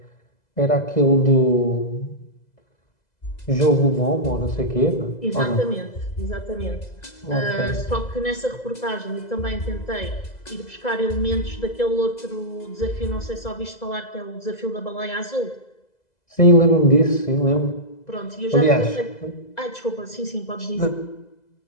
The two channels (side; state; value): right; late; 2.0 ms